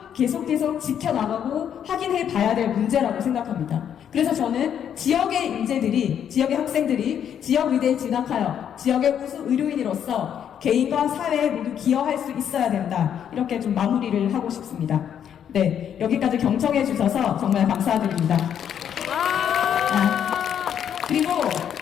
계속 지켜나가고 확인해 봐야 될 문제라고 생각합니다. 그래서 저는 지역의 인재들이, 지역의 학생들이 지역의대에 진학하여 지역의 우수 의료인으로서 개인과 사회에 모두 기여할 수 있어야 된다. 이렇게 좀 마무리를 하고 싶습니다. 네, 여기까지 경청해 주셔서 정말 감사드립니다. 그리고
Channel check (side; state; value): right; quieter; 9.0 dB